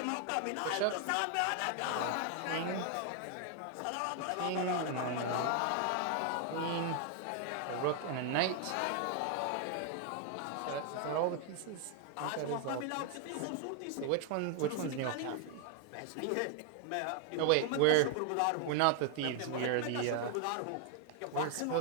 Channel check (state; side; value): different; both; correlation 0.00